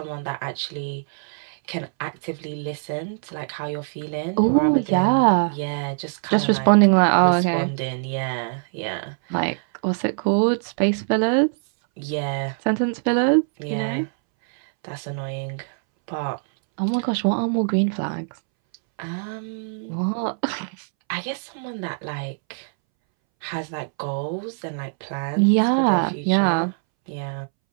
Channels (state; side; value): silent; left; 63 dB below the other